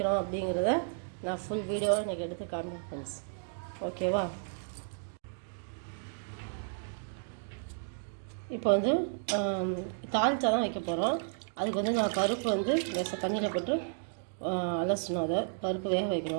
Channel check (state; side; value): silent; left; digital silence